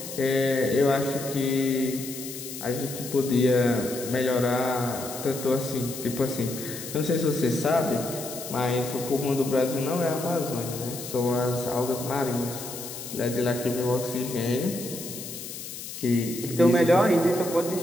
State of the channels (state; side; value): noise; left; hiss, 10 dB below the sound